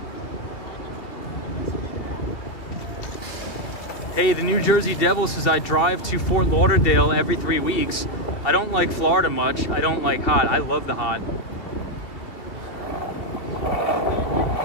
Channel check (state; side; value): late; right; 3.0 ms